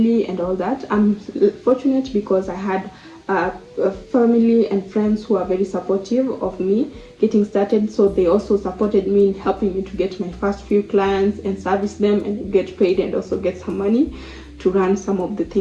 and all that. I'm fortunate because I had a family and friends who are very supportive of me getting started, so they also supported me in helping me to get my first few clients and service them and get paid, and also get some money to run some of the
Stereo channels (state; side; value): identical; both; correlation 1.00